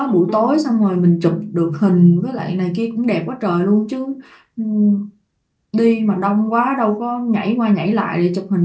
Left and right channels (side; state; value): both; identical; correlation 1.00